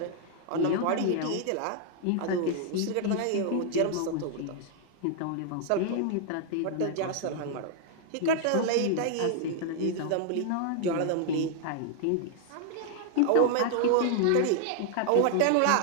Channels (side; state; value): both; different; correlation 0.00